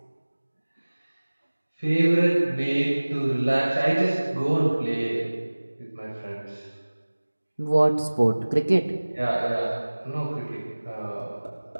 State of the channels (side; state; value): both; inverted; correlation -1.00